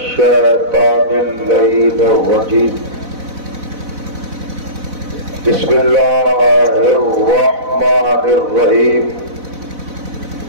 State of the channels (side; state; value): left; late; 4.0 ms